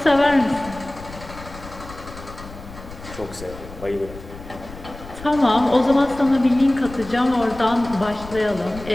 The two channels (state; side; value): noise; left; rumble, 15 dB below the sound